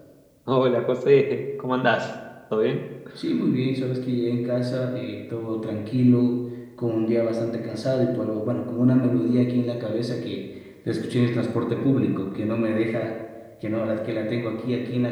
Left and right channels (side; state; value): both; identical; correlation 1.00